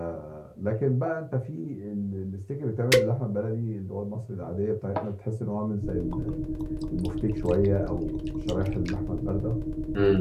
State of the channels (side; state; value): both; identical; correlation 1.00